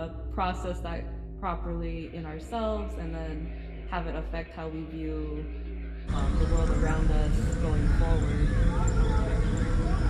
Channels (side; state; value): both; identical; correlation 1.00